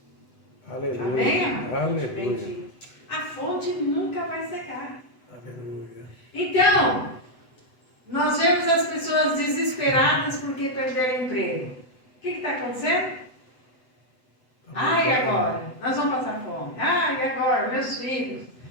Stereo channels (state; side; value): late; right; 8.0 ms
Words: Aleluia. Amém? Aleluia. Bendito. A fonte nunca vai secar. Aleluia. Então, nós vemos as pessoas desesperadas porque perderam o emprego. O que está acontecendo? E agora? Nós vamos passar fome. E agora? Meus filhos.